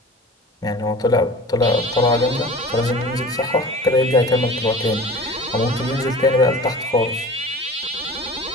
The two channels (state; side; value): normal; both; correlation 0.40